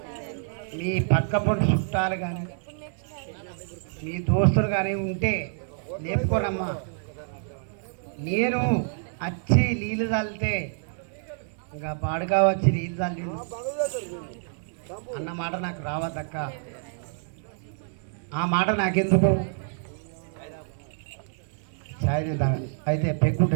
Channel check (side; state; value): left; silent; 60 dB below the other